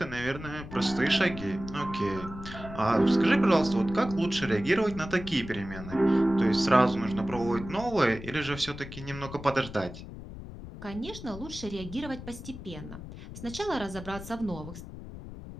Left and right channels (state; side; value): noise; left; rumble, 12 dB below the sound